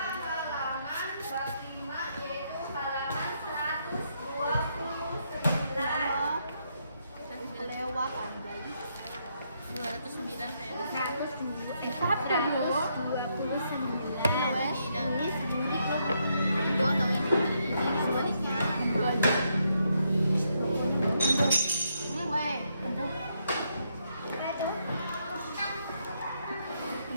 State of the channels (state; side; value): inverted; both; correlation -0.77